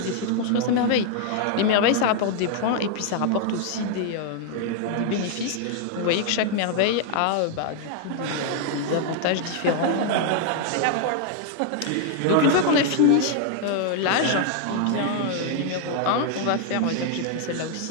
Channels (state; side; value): different; both; correlation 0.00